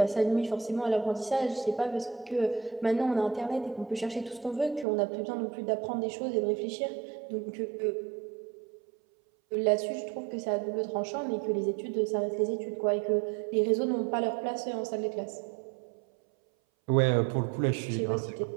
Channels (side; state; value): left; drops out; at 4.9 s